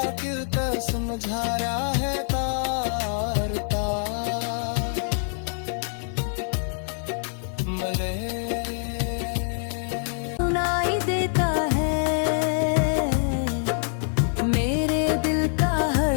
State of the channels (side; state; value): right; silent; 56 dB below the other